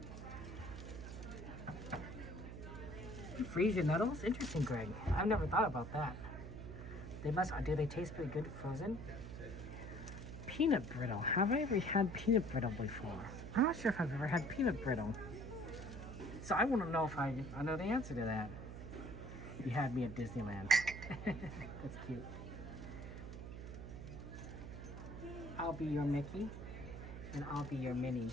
You freeze your nettles? Interesting, Greg. I've never thought about that. They must. Do they taste pretty good frozen? Peanut brittle. Have I ever had peanut brittle before? I'm not sure if I've ever had peanut brittle. So I wouldn't know if I know the answer to that. You had me at Disneyland. That's cute. I'll be your Mickey, and I'll be your Minnie.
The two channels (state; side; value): noise; right; hum, 9 dB below the sound